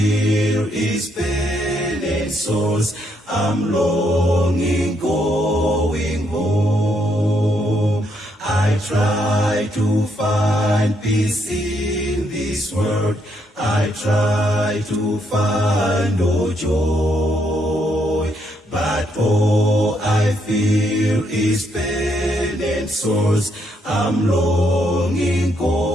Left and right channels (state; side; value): normal; both; correlation 0.75